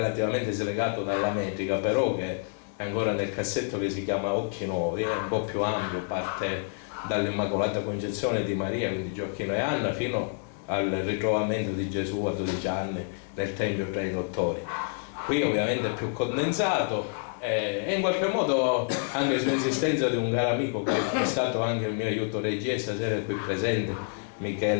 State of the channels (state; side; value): silent; right; 59 dB below the other